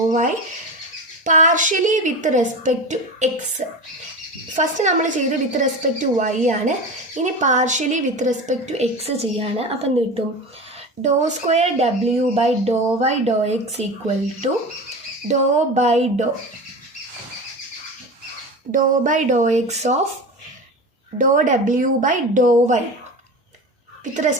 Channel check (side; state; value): both; normal; correlation 0.28